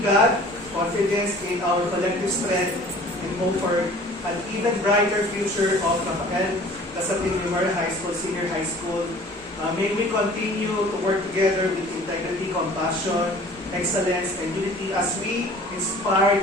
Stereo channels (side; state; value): both; normal; correlation 0.48